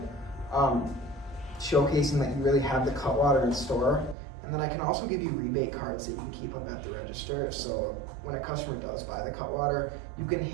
showcasing that you really have the Cutwater in store. And then I can also give you rebate cards that you can keep them at the register. So when a customer does buy the Cutwater, you can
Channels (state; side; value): drops out; left; at 4.2 s